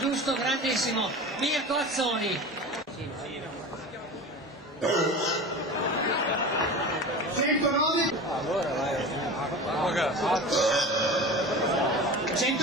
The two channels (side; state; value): both; normal; correlation 0.32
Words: grandissimo. Mirko Azzoni. 109.